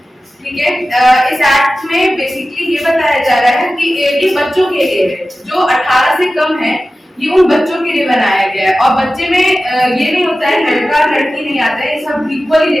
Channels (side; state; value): both; normal; correlation 0.95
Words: ठीक है। इस एक्ट में बेसिकली ये बताया जा रहा है कि ये बच्चों के लिए है, जो 18 से कम है, ये उन बच्चों के लिए बनाया गया है। और बच्चे में ये नहीं होता है लड़का लड़की नहीं आता है, ये सब इक्वली